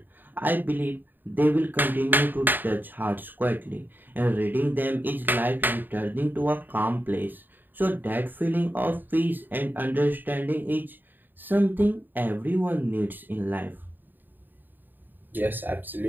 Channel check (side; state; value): left; late; 0.091 ms